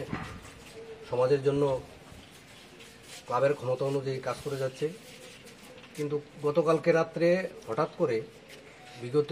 সমাজের জন্য ক্লাবের ক্ষমতা অনুযায়ী কাজ করে যাচ্ছে। কিন্তু গতকালকে রাত্রে হঠাৎ করে বিগত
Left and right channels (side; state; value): both; identical; correlation 1.00